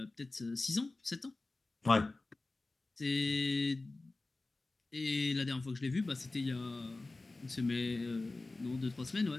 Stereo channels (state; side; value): quieter; right; 3.2 dB